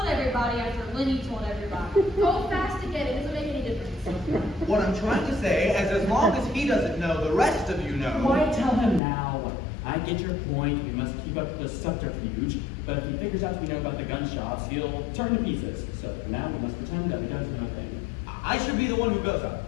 everybody after Lenny told everybody. Go fast again. It doesn't make any difference. What I'm trying to say is, as long as he doesn't know, the rest of you know. Why tell him now? I get your point. We must keep up the subterfuge. But if he figures out we know about the gun shops, he'll turn to pieces. So for now, we must pretend that we don't know a thing. I should be the one who goes up.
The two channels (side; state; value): right; drops out; at 9.0 s